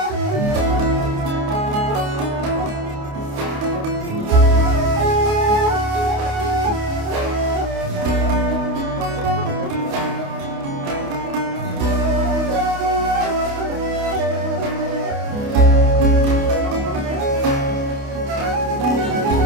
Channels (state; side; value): late; left; 28 ms